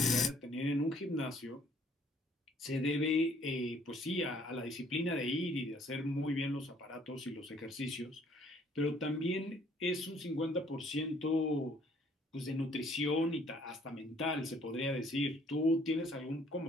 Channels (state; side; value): normal; both; correlation 0.61